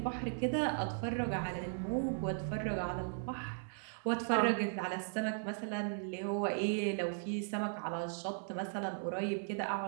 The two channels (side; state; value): left; silent; 53 dB below the other